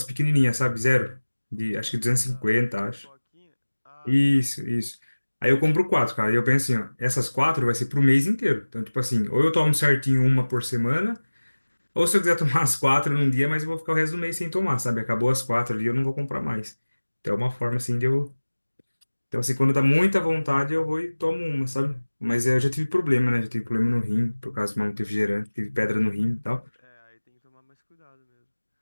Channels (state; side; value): inverted; both; correlation -1.00